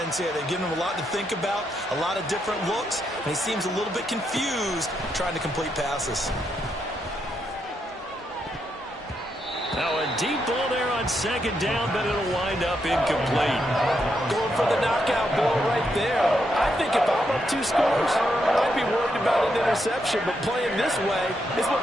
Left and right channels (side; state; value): both; normal; correlation 0.80